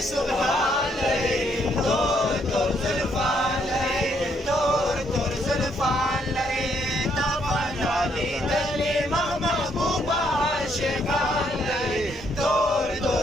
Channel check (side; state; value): both; normal; correlation 0.72